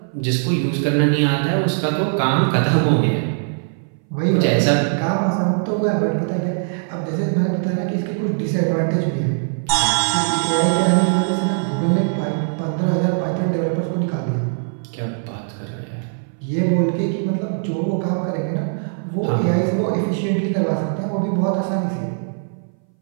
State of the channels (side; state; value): left; silent; 61 dB below the other